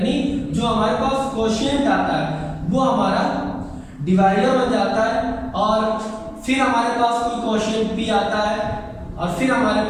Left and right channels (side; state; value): both; identical; correlation 1.00